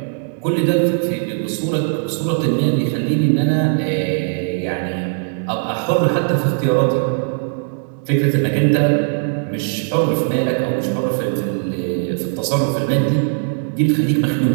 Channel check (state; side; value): silent; left; 67 dB below the other